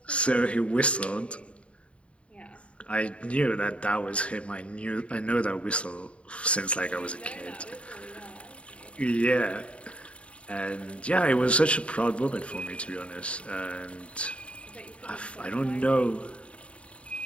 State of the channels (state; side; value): late; right; 0.061 ms